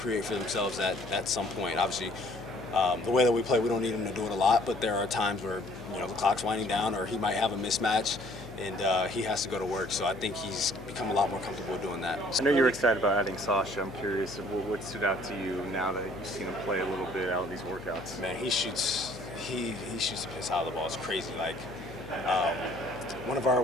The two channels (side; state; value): left; noise; hum, 15 dB below the sound